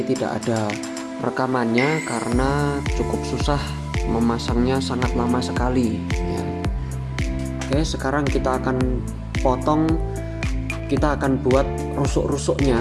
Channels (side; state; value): both; identical; correlation 1.00